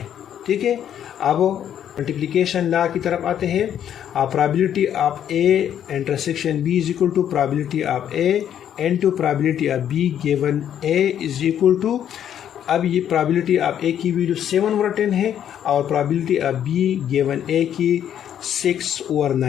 ठीक है, अब मल्टीप्लिकेशन लॉ की तरफ आते हैं। Probability of A intersection B is equal to probability of A into probability of B given A is equal to, अब ये प्रोबेबिलिटी ऑफ ए की वैल्यू 7/10 है और प्रोबेबिलिटी ऑफ बी गिवन ए की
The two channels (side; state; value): right; quieter; 9.8 dB